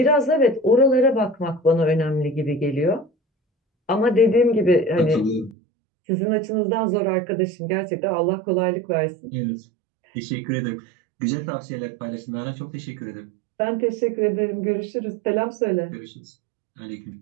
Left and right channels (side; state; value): left; drops out; at 5.6 s